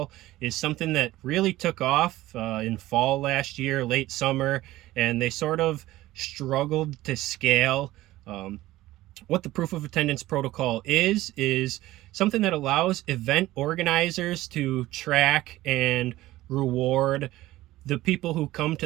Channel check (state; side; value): quieter; left; 16.6 dB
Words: is something that really took off in fall last year, late summer, and they sort of struggled to scale. what the proof of attendance protocol is something that allows event organizers to track and reward the people who come